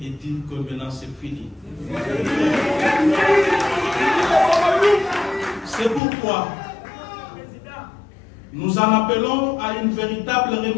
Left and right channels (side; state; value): right; drops out; at 6.0 s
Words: et dire que maintenant c'est fini. C'est pourquoi nous en appelons à une véritable